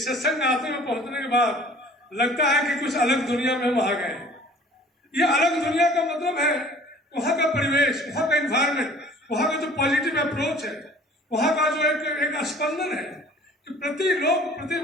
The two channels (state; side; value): normal; both; correlation 0.49